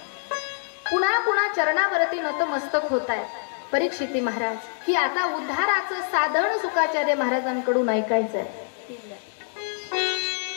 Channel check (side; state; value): right; silent; digital silence